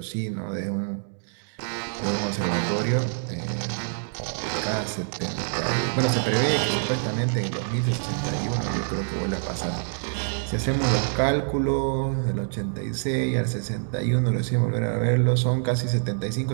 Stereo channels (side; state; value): left; silent; digital silence